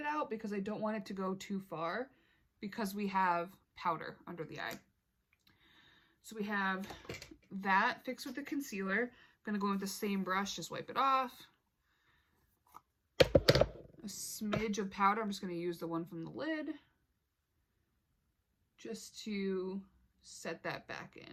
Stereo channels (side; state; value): both; identical; correlation 1.00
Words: out because I don't want it to go too far because we have powder under the eye. So we have that fixed with the concealer. I'm going to go in with the same brush, just wipe it off. A smidge of powder. I'm just going to use the one from the lid just to set that back